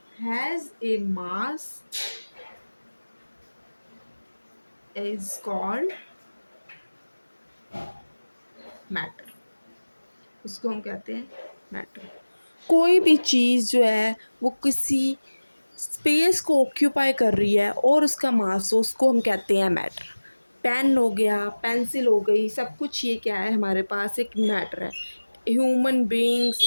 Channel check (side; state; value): both; inverted; correlation -1.00